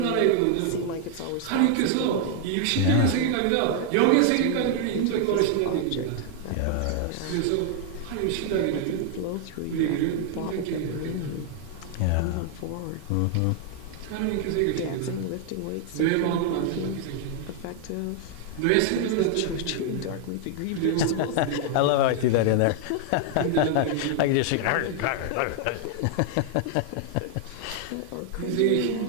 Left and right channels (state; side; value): different; both; correlation 0.00